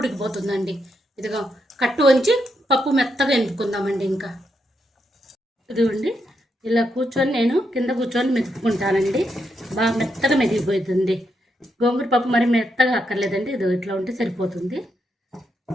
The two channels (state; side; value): normal; both; correlation 0.81